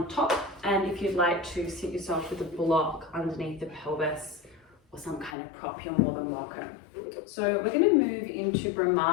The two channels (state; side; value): drops out; right; at 5.4 s